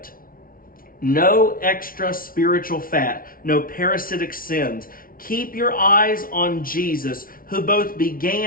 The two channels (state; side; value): late; right; 0.42 ms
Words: No extra spiritual fat, no parasitic sins. Keep your eyes on Jesus, who both